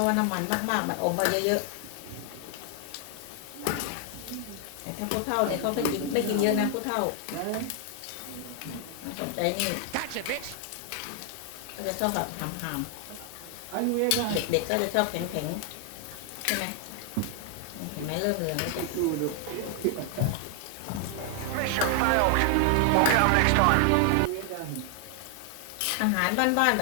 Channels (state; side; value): different; both; correlation 0.00